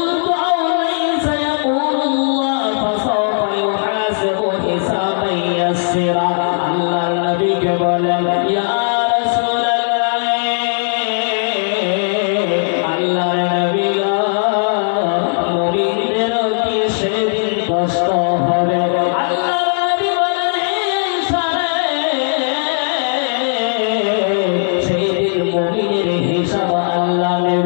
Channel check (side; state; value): right; silent; 59 dB below the other